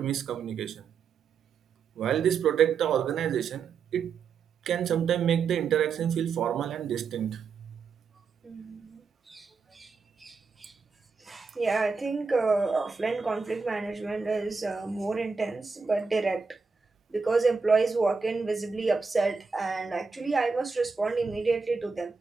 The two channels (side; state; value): left; quieter; 5.2 dB